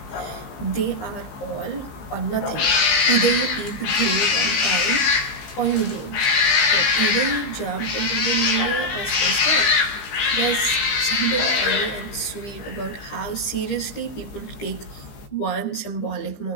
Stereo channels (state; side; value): late; right; 15 ms